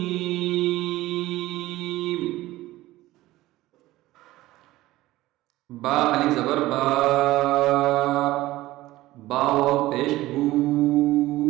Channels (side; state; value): left; quieter; 17.1 dB